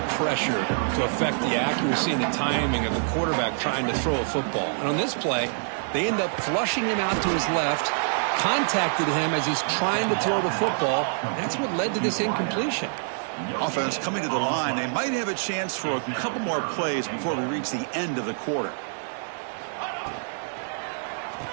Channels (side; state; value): left; silent; digital silence